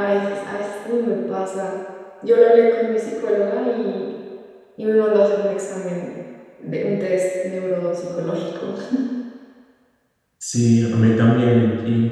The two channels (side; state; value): both; identical; correlation 1.00